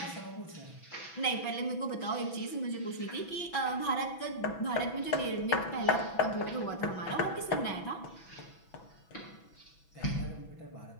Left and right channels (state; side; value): late; right; 6.1 ms